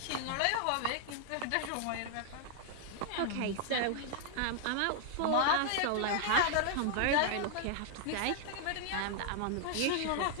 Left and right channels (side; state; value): both; different; correlation 0.00